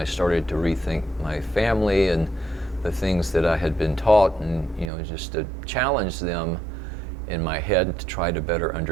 started to rethink my family and the things that I had been taught, and just to challenge them in my head to try to better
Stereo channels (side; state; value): left; drops out; at 4.9 s